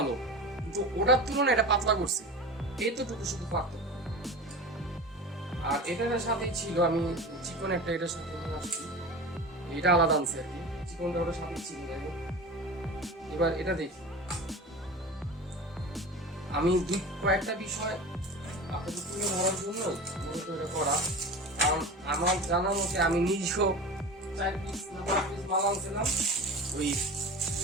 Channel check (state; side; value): normal; both; correlation 0.32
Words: কিন্তু ওটার তুলনায় এটা পাতলা করছে, এইতটুকু শুধু পার্থক্য। আর এটার সাথেই ছিল আমি চিকন একটা এটার সাথে আসছি, এটা আলাদা আনছে আর কি, চিকনটা ওটার সাথেই ছিল। এবার এটা দেখি, আমি কয়েকটা বিষয় আপনাদের তুলে ধরার জন্য মূলত এটা করা। কারণ আমার জানা মতে আমি নিজেও 4 পিস মাল আনছিলাম, ওই